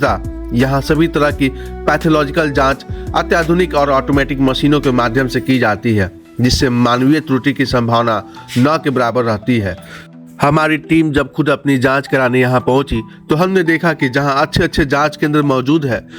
यहाँ सभी तरह की पैथोलॉजिकल जांच अत्याधुनिक और ऑटोमेटिक मशीनों के माध्यम से की जाती है, जिससे मानवीय त्रुटि की संभावना न के बराबर रहती है। हमारी टीम जब खुद अपनी जांच कराने यहाँ पहुंची तो हमने देखा कि जहां अच्छे जांच केंद्र मौजूद है,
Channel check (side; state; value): both; identical; correlation 1.00